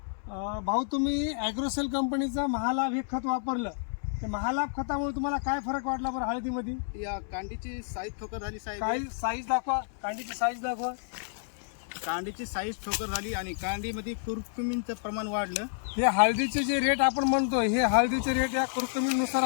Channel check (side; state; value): right; silent; digital silence